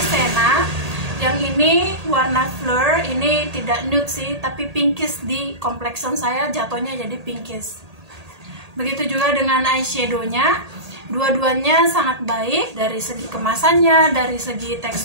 Senna, yang ini warna Fleur. Ini tidak nude sih, tapi pinkish di complexion saya, jatuhnya jadi pinkish. Begitu juga dengan eyeshadownya, dua-duanya sangat baik dari segi kemasannya, dari segi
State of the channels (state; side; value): late; left; 1.8 ms